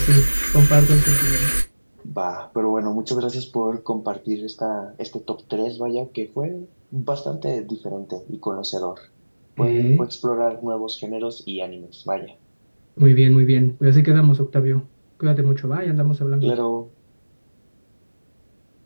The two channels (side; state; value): both; inverted; correlation -1.00